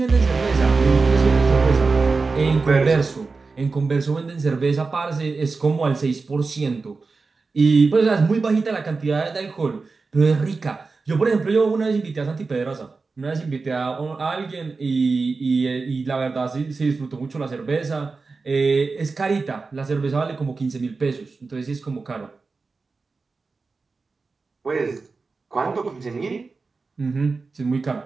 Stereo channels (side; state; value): left; quieter; 4.2 dB